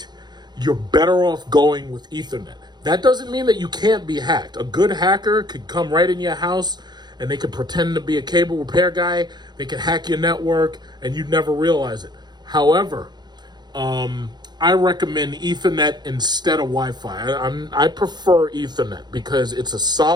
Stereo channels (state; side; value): late; left; 0.21 ms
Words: you're better off going with Ethernet. That doesn't mean that you can't be hacked. A good hacker could come right in your house and they could pretend to be a cable repair guy. They could hack your network and you'd never realize it. However, I recommend Ethernet instead of Wi-Fi. I prefer Ethernet because it's a